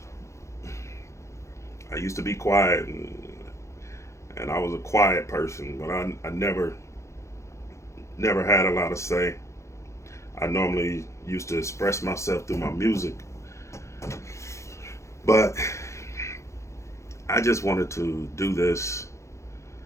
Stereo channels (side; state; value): right; late; 0.14 ms